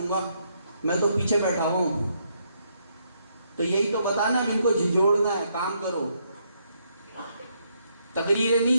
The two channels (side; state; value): both; inverted; correlation -0.75